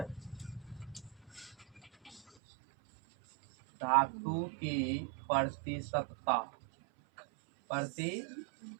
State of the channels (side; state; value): left; drops out; at 2.2 s